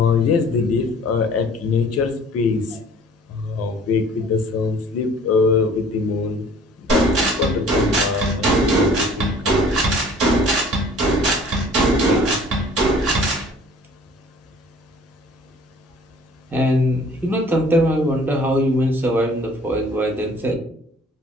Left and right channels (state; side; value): normal; both; correlation 0.51